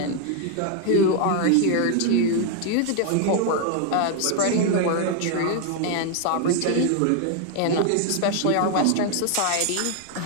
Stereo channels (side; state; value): both; different; correlation 0.00